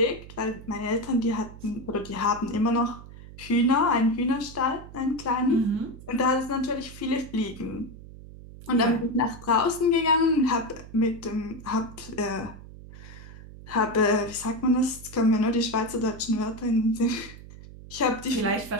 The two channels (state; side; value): noise; right; hum, 16 dB below the sound